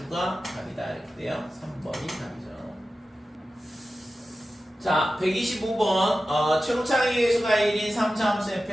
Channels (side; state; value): both; normal; correlation 0.94